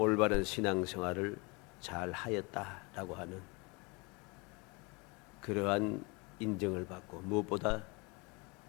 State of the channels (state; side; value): quieter; right; 28.5 dB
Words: 신앙생활을 잘 하였다라고 하는 그러한 인정을 받고, 무엇보다